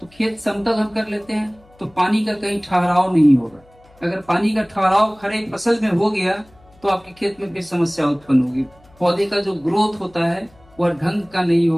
खेत समतल हम कर लेते हैं तो पानी का कहीं ठहराव नहीं होगा। अगर पानी का ठहराव खड़े फसल में हो गया तो आपके खेत में फिर समस्या उत्पन्न होगी। पौधे का जो ग्रोथ होता है वह ढंग का नहीं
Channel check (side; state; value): left; noise; hum, 29 dB below the sound